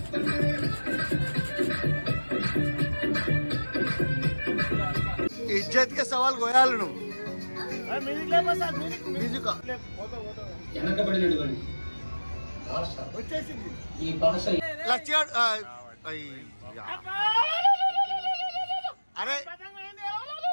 ఇజ్జత్ కే సవాల్ గోయాలు నువ్వు. అరే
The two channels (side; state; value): both; inverted; correlation -1.00